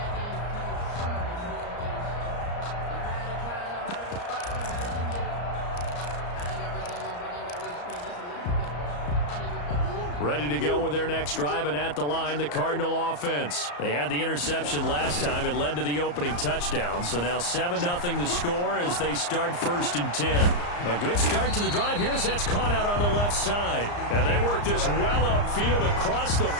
Ready to go with their next drive, and at the line, the Cardinal offense. They had the interception last time. It led to the opening touchdown. So now 7-0 the score as they start 1st and 10. A good start to the drive here as that's caught out on the left side. And they work this well upfield across the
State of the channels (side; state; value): right; late; 34 ms